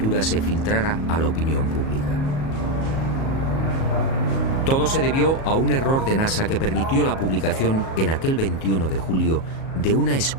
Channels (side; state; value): right; late; 37 ms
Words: se filtrara a la opinión pública. Todo se debió a un error de NASA que permitió la publicación en aquel 21 de julio de una